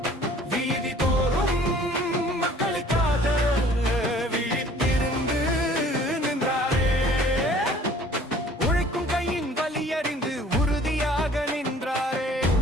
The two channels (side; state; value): both; normal; correlation 0.52